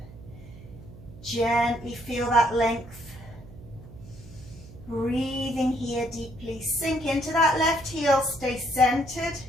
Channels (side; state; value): right; noise; hum, 18 dB below the sound